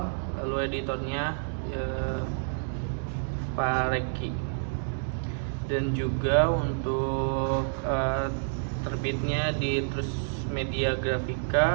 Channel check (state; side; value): silent; left; digital silence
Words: lalu editornya Pak Reki. Dan juga untuk terbitnya di Terus Media